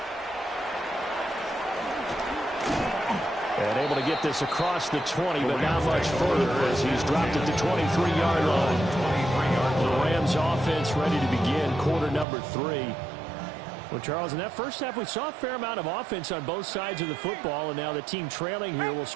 And able to get this across the 20, but not much further as he's dropped it to 23-yard line. The Rams offense ready to begin quarter number 3. Well, Charles, in that first half, we saw a fair amount of offense on both sides of the football, and now the team trailing here will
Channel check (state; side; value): drops out; left; at 12.2 s